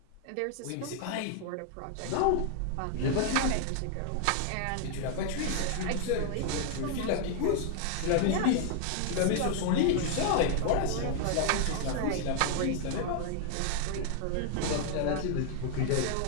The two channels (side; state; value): both; different; correlation 0.00